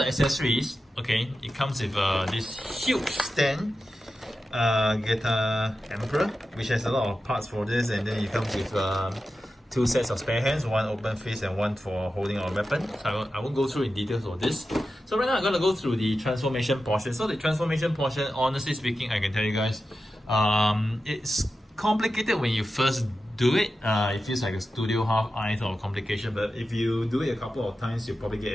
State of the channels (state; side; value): normal; both; correlation 0.92